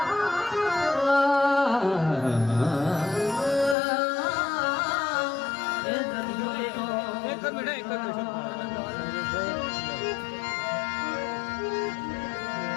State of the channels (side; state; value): right; drops out; at 3.8 s